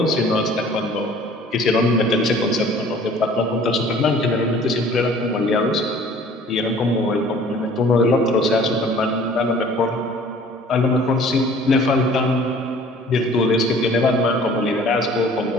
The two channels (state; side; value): normal; both; correlation 0.51